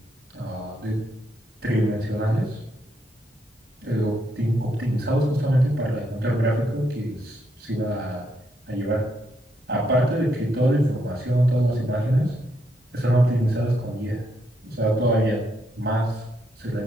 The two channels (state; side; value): normal; both; correlation 0.77